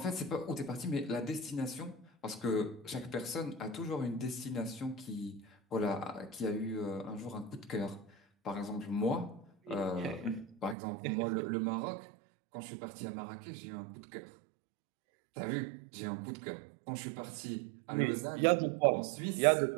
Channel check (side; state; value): left; drops out; at 10.8 s